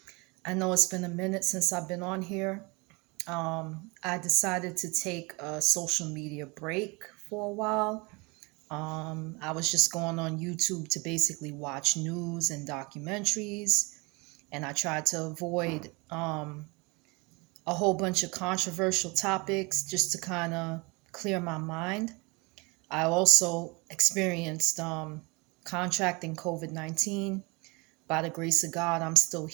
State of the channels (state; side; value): quieter; left; 27.3 dB